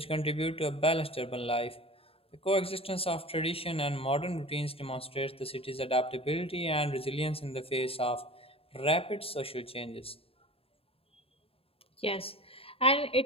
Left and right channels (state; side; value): late; right; 0.27 ms